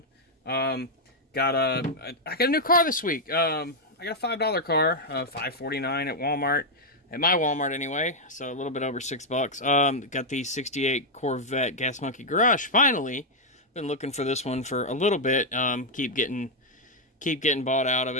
I got a new car this week. I got a $5 car, $5.49 at Walmart, at my Walmart anyway. So a little bit over $6. Got the '68 Corvette Gas Monkey Garage. Finally, been looking for this one for a little bit. Keep getting bought out of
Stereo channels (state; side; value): normal; both; correlation -0.02